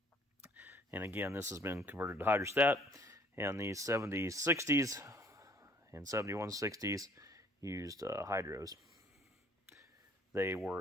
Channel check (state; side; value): normal; both; correlation 0.58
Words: And again, this has been converted to hydrostat. And the 7060s and 7160s used hydros. They